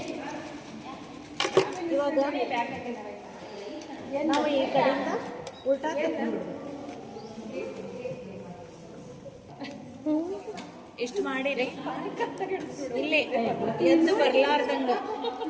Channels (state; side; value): identical; both; correlation 1.00